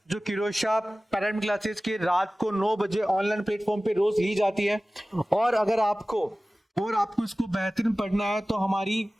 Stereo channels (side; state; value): both; normal; correlation 0.97